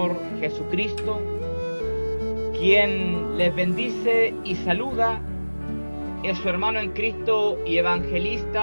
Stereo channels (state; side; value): inverted; both; correlation -1.00